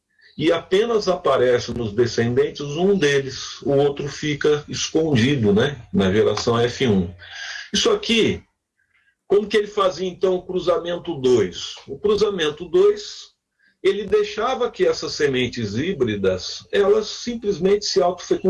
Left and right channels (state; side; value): identical; both; correlation 1.00